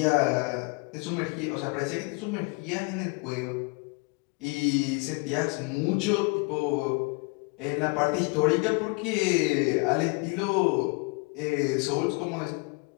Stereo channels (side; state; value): right; quieter; 30.8 dB